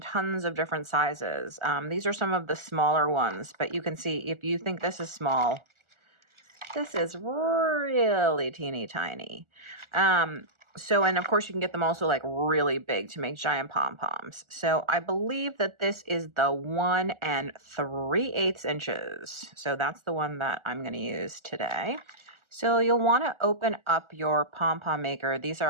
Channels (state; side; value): late; left; 1.4 ms